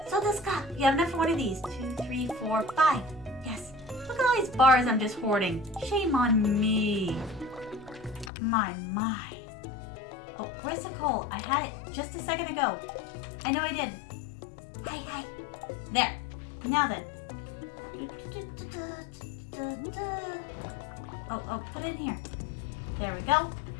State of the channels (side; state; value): right; drops out; at 8.3 s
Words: So this guy, you have enough for one of these. 2, 3, 4, 5. Yes. Look at all these bars I'm just hoarding. Shame on me. My. Oh, where's the coal? I had it just a second ago. I know I did. Hi. There. Now then. Oh, put it in here. There we go.